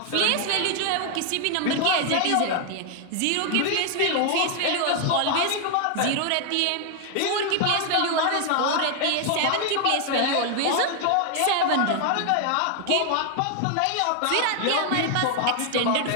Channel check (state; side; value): different; both; correlation 0.00